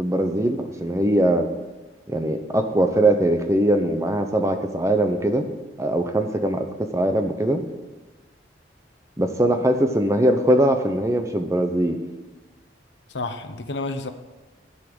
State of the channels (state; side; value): normal; both; correlation 0.70